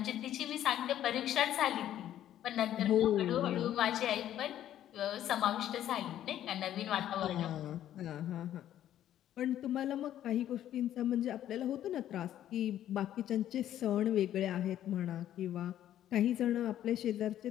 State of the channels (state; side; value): quieter; right; 11.7 dB